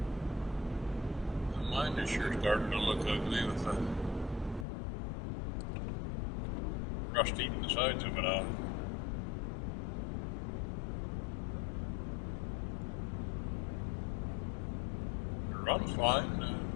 Mine is sure starting to look ugly with the rust eating the sides of it off. Runs fine.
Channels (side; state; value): right; drops out; at 4.7 s